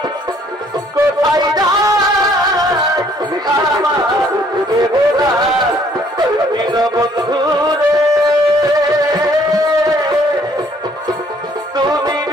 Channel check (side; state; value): both; normal; correlation 0.62